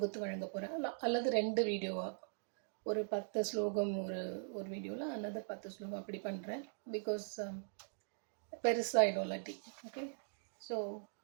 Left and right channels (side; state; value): left; silent; digital silence